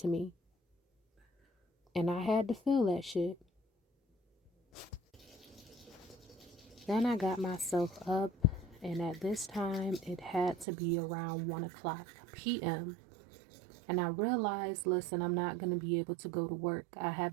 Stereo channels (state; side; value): drops out; left; at 10.7 s